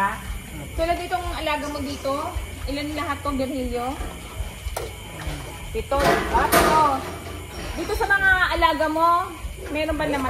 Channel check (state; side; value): identical; both; correlation 1.00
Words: Tulad itong alaga mo dito, ilan lahat tong Virgilio? 7. Dito sa mga alaga mo, meron ba